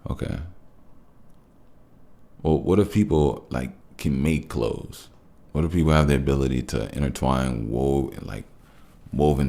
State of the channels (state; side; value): identical; both; correlation 1.00